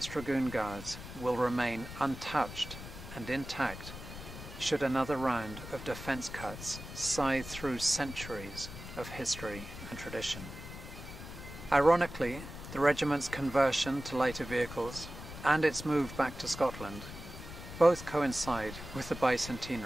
Dragoon Guards will remain untouched and intact should another round of defence cuts scythe through centuries of history and tradition. Ironically, the regiment's conversion to lighter vehicles and its move back to Scotland both coincide with the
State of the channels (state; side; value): noise; left; rumble, 12 dB below the sound